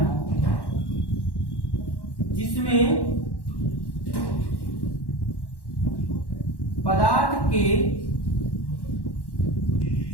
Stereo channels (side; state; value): right; late; 1.1 ms